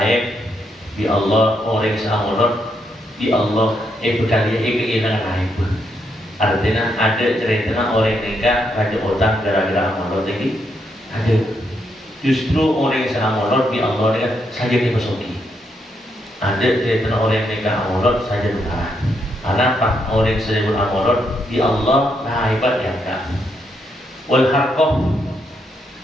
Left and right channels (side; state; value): both; normal; correlation 0.78